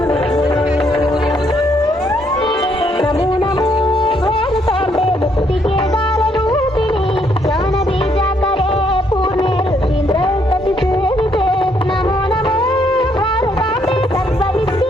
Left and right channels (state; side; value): normal; both; correlation 0.71